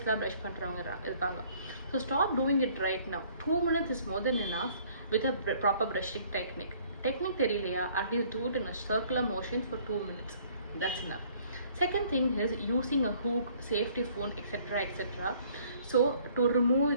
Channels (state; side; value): inverted; both; correlation -0.59